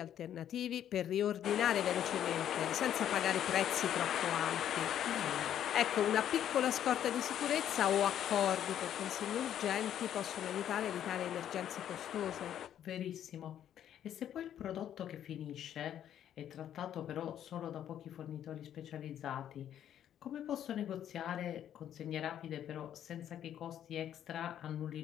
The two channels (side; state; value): right; quieter; 10.4 dB